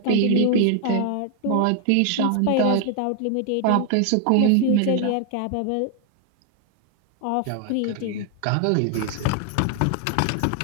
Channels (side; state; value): both; different; correlation 0.00